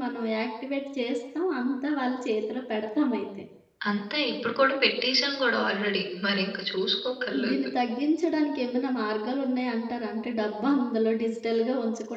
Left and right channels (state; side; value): identical; both; correlation 1.00